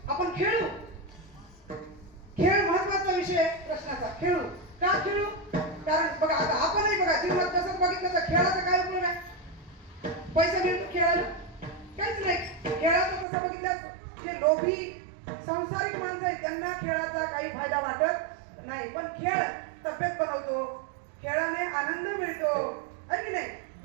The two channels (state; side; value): drops out; left; at 13.2 s